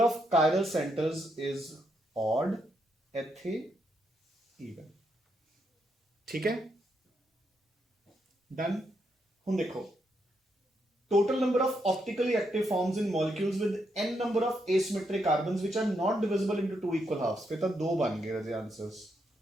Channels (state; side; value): normal; both; correlation 0.79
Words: of chiral centers is odd, ਇੱਥੇ even, ठीक है। डन। ਹੁਣ देखो total number of optically active forms in molecules with n number of asymmetric carbons which are not divisible into 2 equal halves, ਫਿਰ ਤਾਂ ਦੋ ਬਣ ਗਏ ਰਾਜੇ answers,